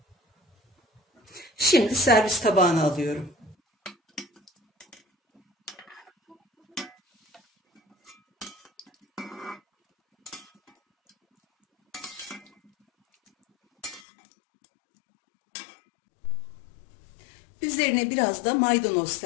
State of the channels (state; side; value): drops out; right; at 14.0 s